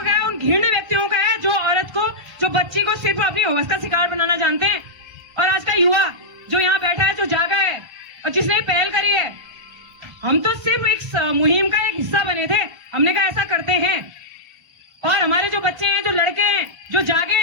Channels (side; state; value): left; late; 1.4 ms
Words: है, उन घृण्य व्यक्तियों का है जो औरत को, जो बच्ची को सिर्फ अपनी हवस का शिकार बनाना जानते हैं। और आज का युवा जो यहाँ बैठा है, जो जागा है और जिसने पहल करी है, हम तो सिर्फ एक मुहिम का एक हिस्सा बने थे। हमने कहा ऐसा करते हैं और हमारे जो बच्चे हैं, जो लड़के हैं, जो जागे